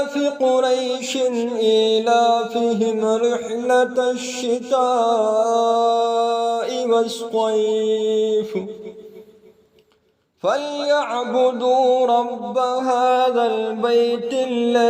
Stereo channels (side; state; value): both; identical; correlation 1.00